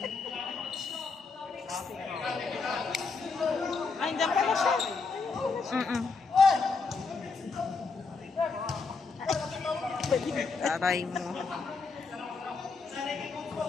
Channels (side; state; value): right; quieter; 4.5 dB